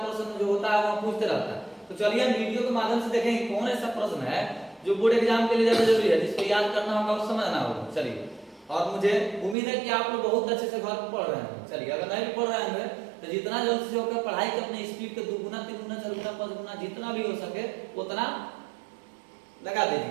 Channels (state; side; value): drops out; left; at 9.6 s